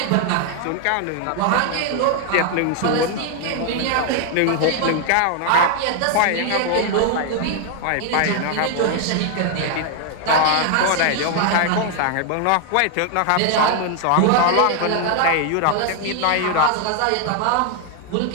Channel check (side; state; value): both; different; correlation 0.00